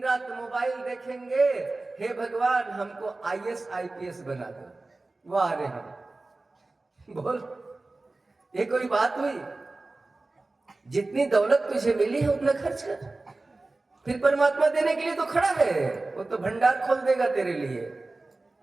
रात मोबाइल देखेंगे, हे भगवान हमको IAS IPS बना दो। वाह रे हम बोल, ये कोई बात हुई? जितनी दौलत तुझे मिली है उतना खर्च कर, फिर परमात्मा देने के लिए तो खड़ा है, वो तो भंडार खोल देगा तेरे लिए।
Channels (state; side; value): quieter; left; 3.2 dB